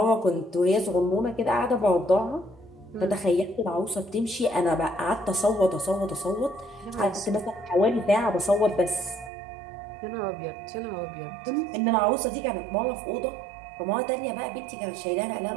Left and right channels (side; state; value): left; drops out; at 9.3 s